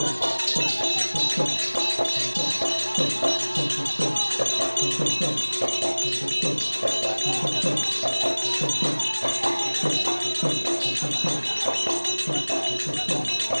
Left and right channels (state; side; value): inverted; both; correlation -1.00